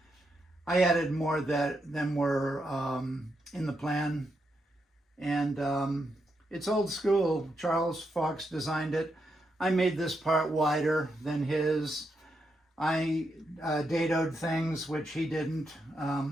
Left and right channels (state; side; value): normal; both; correlation 0.82